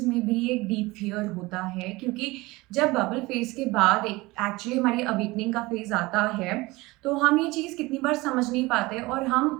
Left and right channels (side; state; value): left; quieter; 21.5 dB